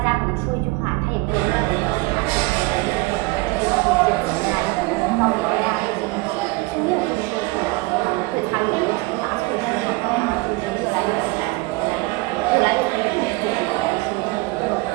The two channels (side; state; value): left; quieter; 23.1 dB